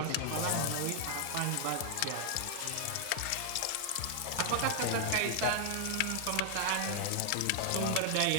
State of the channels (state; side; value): different; both; correlation 0.00